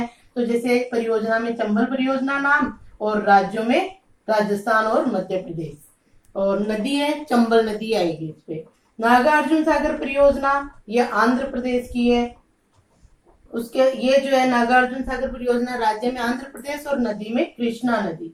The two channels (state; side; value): identical; both; correlation 1.00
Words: तो जैसे परियोजना में चंबल परियोजना नाम और राज्यों में राजस्थान और मध्य प्रदेश, और नदी है चंबल नदी आएगी इस पे। नागार्जुन सागर परियोजना ये आंध्र प्रदेश की है। उसके ये जो है नागार्जुन सागर परियोजना राज्य में आंध्र प्रदेश और नदी में कृष्णा